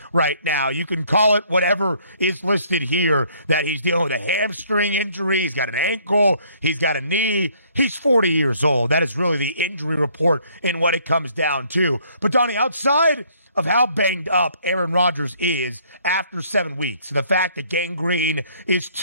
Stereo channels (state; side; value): inverted; both; correlation -0.63